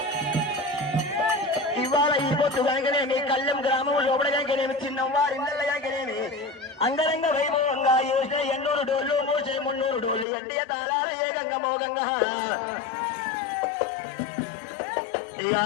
ఇవాళ ఈ పొత్తు కనుకనేమి కళ్ళెం గ్రామం లోపల కనుకనేమి చిన్నవారి నల్ల కనుకనేమి అంగరంగ వైభవంగా యోసే 800 డోళ్ళు మోసే 300 డోళ్ళు ఎండియ తాళాలు ఏకంగా మోగంగా ఇక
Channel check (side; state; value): right; drops out; at 10.2 s